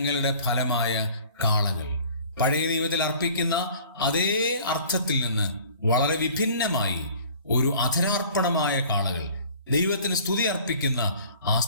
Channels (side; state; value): both; inverted; correlation -0.49